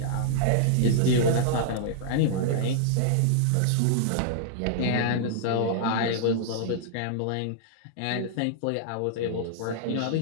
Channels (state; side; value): different; both; correlation -0.01